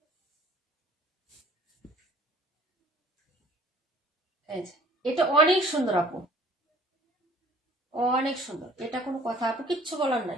এই যে, এটা অনেক সুন্দর আপু, অনেক সুন্দর, এটা কোনো কথা আপু, কিচ্ছু বলার নাই।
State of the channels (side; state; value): both; normal; correlation 0.53